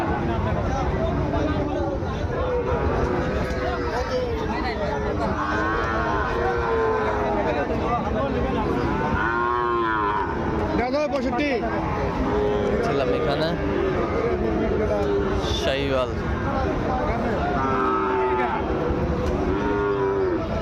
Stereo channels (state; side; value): identical; both; correlation 1.00